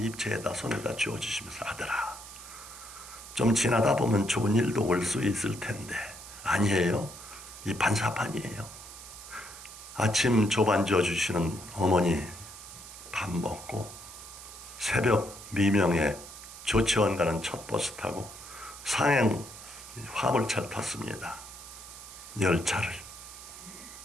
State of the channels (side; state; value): right; noise; hiss, 14 dB below the sound